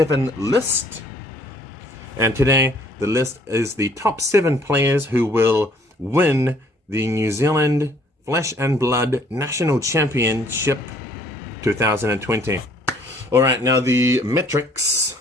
list. And today, the list is the top 7 players who will win the New Zealand Flesh and Blood National Championship 2020. All right, now the metrics.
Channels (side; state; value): both; normal; correlation 0.60